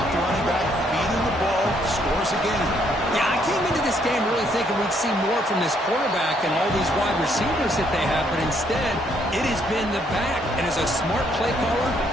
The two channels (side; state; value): both; normal; correlation 0.70